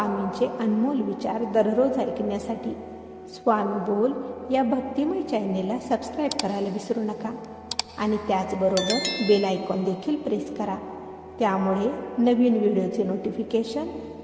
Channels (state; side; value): identical; both; correlation 1.00